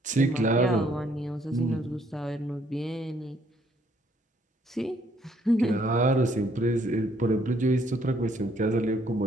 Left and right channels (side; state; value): both; normal; correlation 0.66